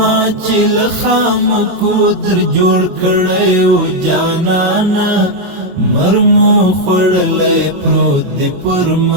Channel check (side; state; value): left; late; 22 ms